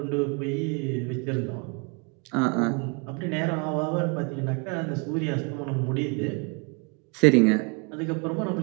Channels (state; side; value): quieter; left; 32.9 dB